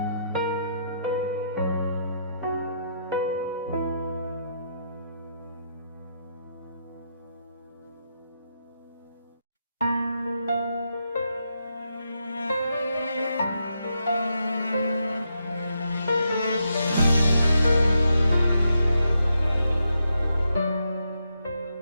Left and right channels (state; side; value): inverted; both; correlation -0.81